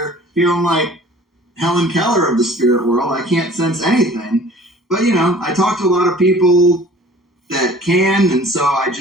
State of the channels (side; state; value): both; normal; correlation 0.49